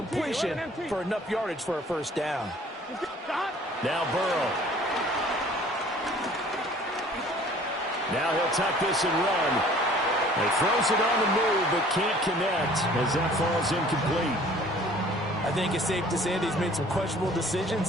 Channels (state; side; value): normal; both; correlation 0.52